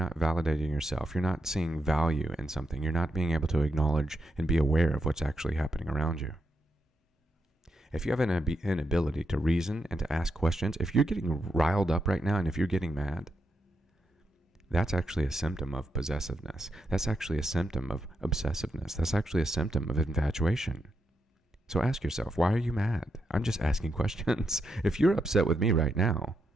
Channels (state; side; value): normal; both; correlation 0.84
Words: validating yourself. You're not seeing value in something. You're not being able to acknowledge and be aware of what's actually happening around you. If you have an inability to reason and to ask questions, if you're getting riled up right now and if you're getting mad, that's actually a symptom of possessiveness. That's actually a symptom of obsessiveness. That's actually a symptom of infatuation. So ask yourself, why are you mad? I'm just asking questions. If you're upset with me right now,